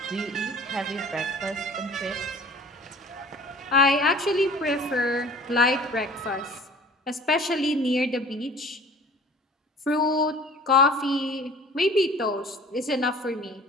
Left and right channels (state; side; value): normal; both; correlation 0.46